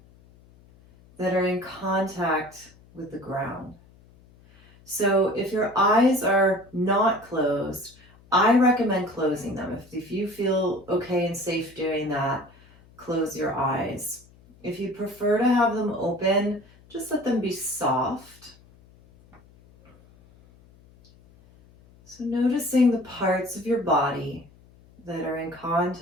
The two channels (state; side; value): noise; left; hum, 27 dB below the sound